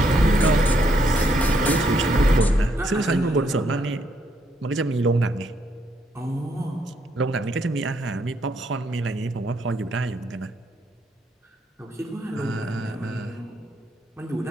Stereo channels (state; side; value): normal; both; correlation 0.74